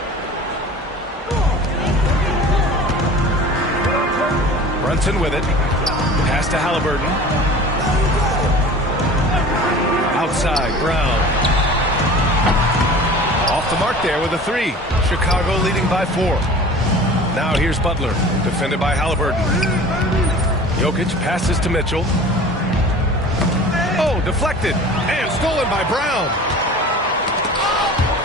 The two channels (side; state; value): both; normal; correlation 0.41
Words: Brunson with it. Pass to Halliburton. Outside, Brown. Off the mark there with a 3. Chicago leading by 4. Now here's Butler, defended by Halliburton. Jokic passes to Mitchell. Oh, deflected and stolen by Brown.